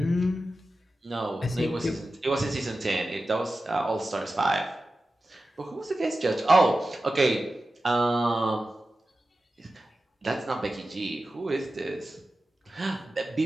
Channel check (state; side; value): normal; both; correlation 0.93